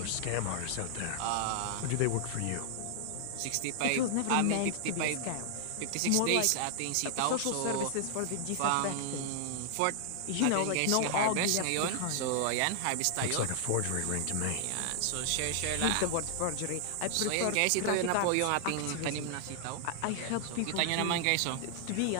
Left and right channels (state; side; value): different; both; correlation 0.00